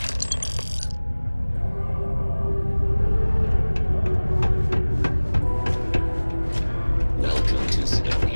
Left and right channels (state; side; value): inverted; both; correlation -1.00